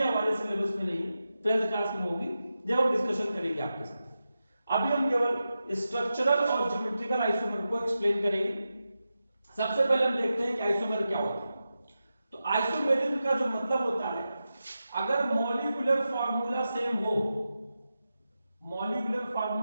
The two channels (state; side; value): inverted; both; correlation -0.91